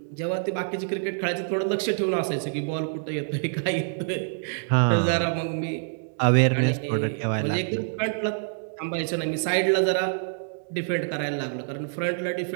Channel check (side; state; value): left; silent; digital silence